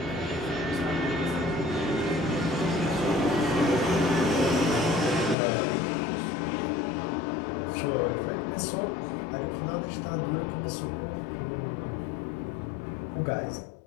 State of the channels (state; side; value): drops out; right; at 5.4 s